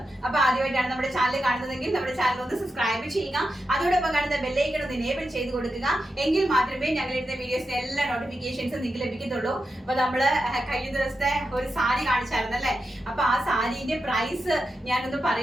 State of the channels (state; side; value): normal; both; correlation 0.89